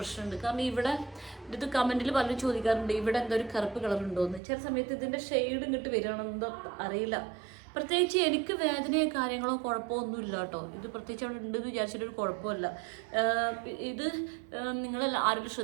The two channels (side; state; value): left; drops out; at 4.4 s